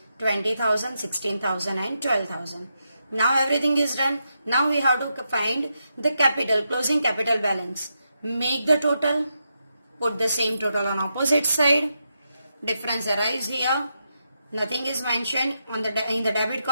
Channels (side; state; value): both; inverted; correlation -0.84